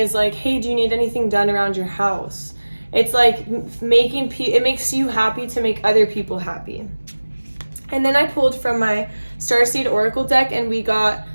like, hey, do you need anything done around your house? It's like it makes you happy to make other people happy. And then I pulled from my Starseed Oracle deck, and we got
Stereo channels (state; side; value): inverted; both; correlation -1.00